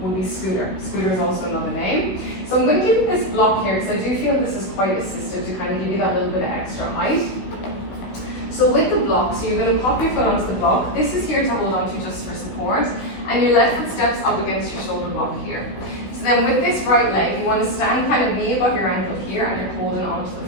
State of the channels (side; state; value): right; late; 16 ms